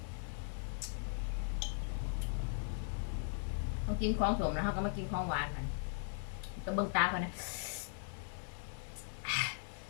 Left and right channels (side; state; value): right; silent; 52 dB below the other